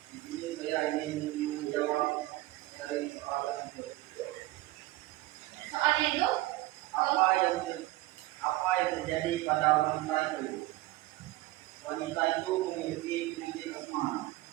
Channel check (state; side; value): quieter; left; 18.3 dB